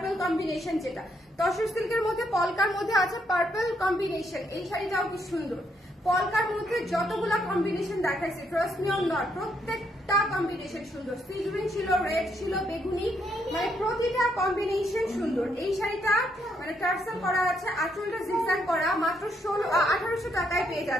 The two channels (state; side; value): normal; both; correlation 0.75